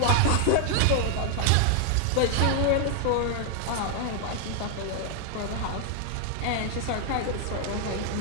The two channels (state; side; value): different; both; correlation 0.00